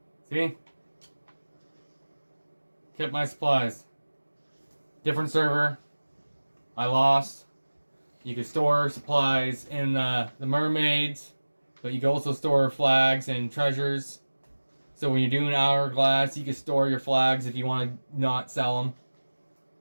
See? Kept my supplies. Different server. I lost. You could store supplies in the mermaids, but you can also store flags and treasures. So when you're doing hourglass, you can store your flags if you want to not sell them.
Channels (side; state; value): both; inverted; correlation -1.00